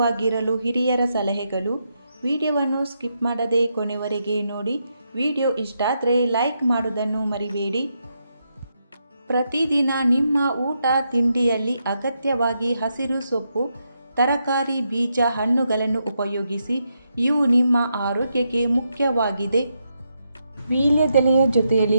ಹಿರಿಯರ ಸಲಹೆಗಳು. ವಿಡಿಯೋವನ್ನು ಸ್ಕಿಪ್ ಮಾಡದೆ ಕೊನೆವರೆಗೆ ನೋಡಿ. ವಿಡಿಯೋ ಇಷ್ಟ ಆದರೆ ಲೈಕ್ ಮಾಡೋದನ್ನು ಮರಿಬೇಡಿ. ಪ್ರತಿದಿನ ನಿಮ್ಮ ಊಟ ತಿಂಡಿಯಲ್ಲಿ ಅಗತ್ಯವಾಗಿ ಹಸಿರು ಸೊಪ್ಪು, ತರಕಾರಿ, ಬೀಜ, ಹಣ್ಣುಗಳನ್ನು ಉಪಯೋಗಿಸಿ. ಇವು ನಿಮ್ಮ ಆರೋಗ್ಯಕ್ಕೆ ಮುಖ್ಯವಾಗಿದೆ. ವೀಳ್ಯದೆಲೆಯ ಜೊತೆಯಲ್ಲಿ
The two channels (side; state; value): both; inverted; correlation -0.82